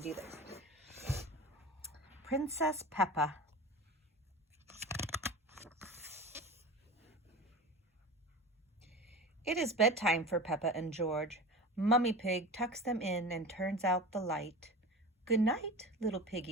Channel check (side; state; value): both; normal; correlation 0.32